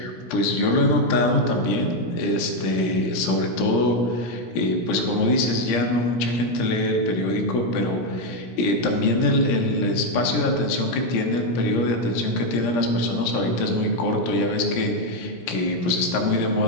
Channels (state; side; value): late; right; 17 ms